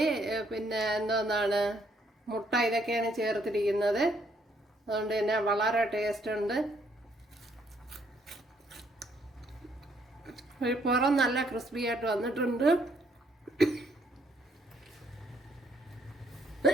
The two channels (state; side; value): normal; both; correlation 0.69